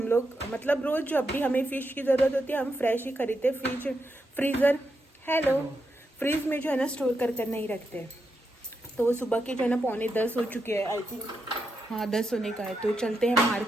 लोग, मतलब रोज़ जब भी हमें फ़िश की ज़रूरत होती है हम फ्रेश ही खरीदते, फ्रीज में जो है ना स्टोर कर नहीं रखते। तो सुबह के जो है ना 9:45 हो चुके हैं, आई थिंक हाँ 10 होने का है। तो चलते हैं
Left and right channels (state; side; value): normal; both; correlation 0.84